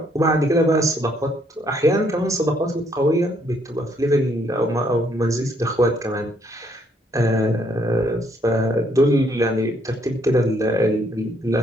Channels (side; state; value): both; normal; correlation 0.69